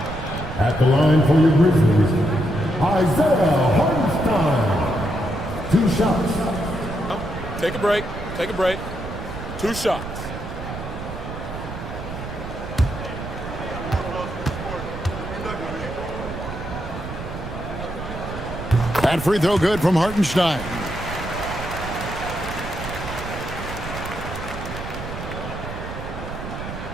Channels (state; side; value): noise; right; rumble, 9 dB below the sound